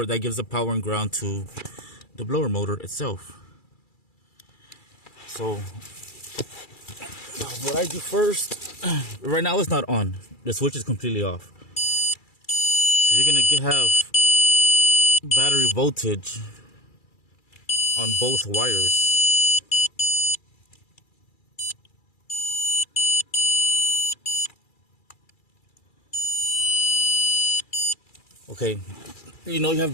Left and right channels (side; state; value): right; late; 2.3 ms